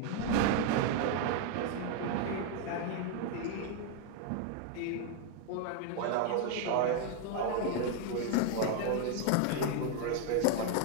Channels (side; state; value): both; different; correlation 0.01